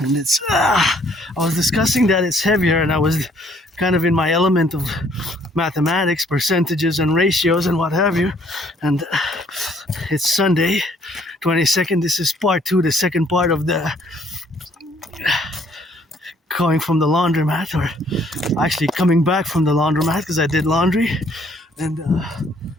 it's I was discussing that it's heavier, and I was kind of in my element of mathematics, percentages and ratios and what have you. And it's Sunday 22nd. This is part two, the second part of the going from the laundromat, or actually coming back from the laundromat, because I did laundry. And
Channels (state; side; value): normal; both; correlation 0.63